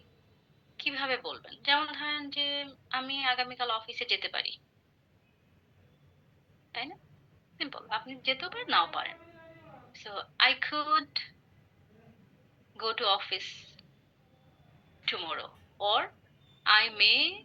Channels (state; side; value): identical; both; correlation 1.00